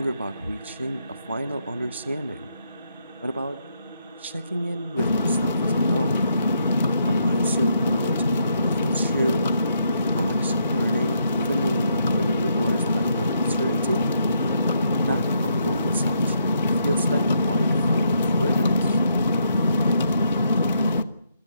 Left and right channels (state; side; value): inverted; both; correlation -0.75